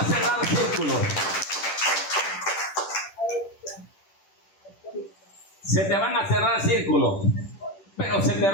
cerrar círculos. Se te van a cerrar círculos. pero se te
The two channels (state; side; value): late; right; 10 ms